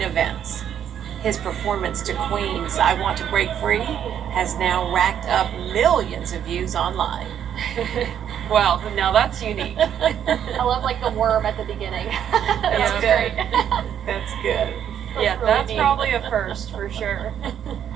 events. His performance to Queen's I Want to Break Free has now racked up millions of views online. Well, now that's unique. I love like the worm at the beginning. That's Yeah, good. That's good. Yeah, really that's neat. probably a first for sure.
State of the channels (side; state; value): left; quieter; 9.4 dB